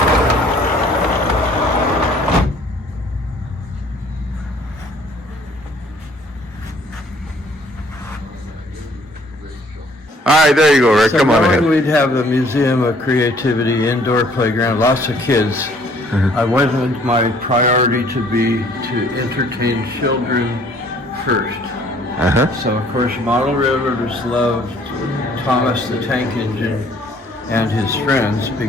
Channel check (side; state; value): both; normal; correlation 0.58